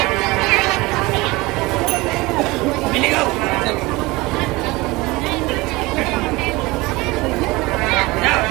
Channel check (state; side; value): quieter; left; 22.1 dB